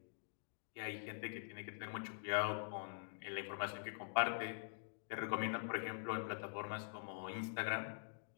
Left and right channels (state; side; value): silent; right; digital silence